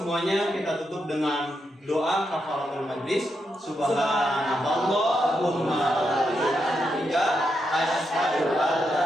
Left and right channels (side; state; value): both; normal; correlation 0.83